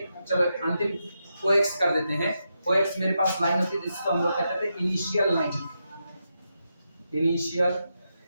चलो अंतिम कोएक्स कर देते हैं। कोएक्स मेरे पास लाइन होती थी जिसको हम लोग कहते थे इनिशियल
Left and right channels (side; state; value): both; inverted; correlation -0.85